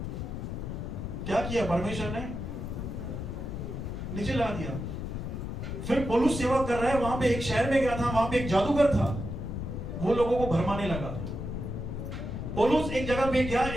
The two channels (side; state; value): left; noise; rumble, 5 dB below the sound